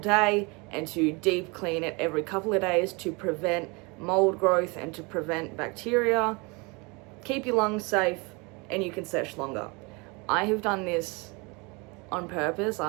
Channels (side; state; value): left; quieter; 28.4 dB